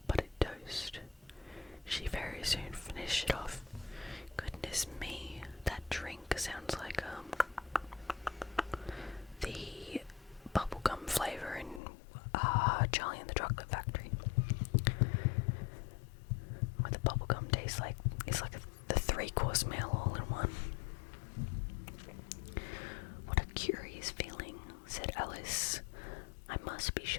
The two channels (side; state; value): right; drops out; at 11.8 s